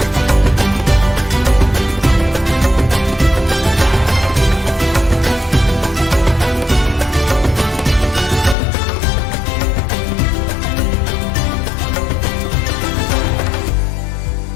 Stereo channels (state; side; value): drops out; right; at 8.6 s